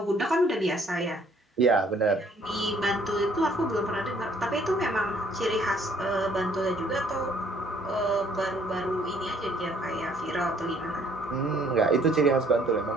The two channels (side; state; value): both; normal; correlation 0.62